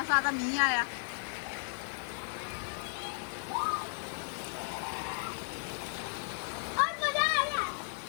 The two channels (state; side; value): silent; right; digital silence